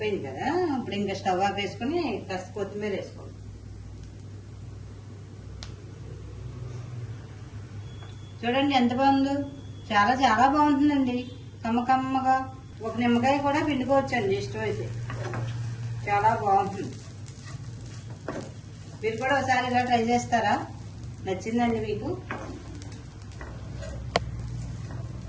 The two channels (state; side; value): identical; both; correlation 1.00